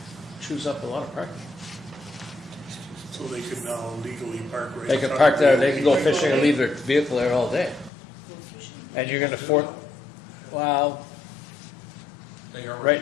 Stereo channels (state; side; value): drops out; right; at 7.9 s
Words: chews up a lot of parking. So they could now legally park right. They in can front park of there, the they can go building. fishing and leave their vehicle there all day. Go fishing. And you're gonna well, They already. right